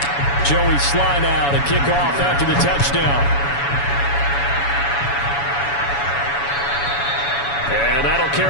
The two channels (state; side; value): late; right; 7.1 ms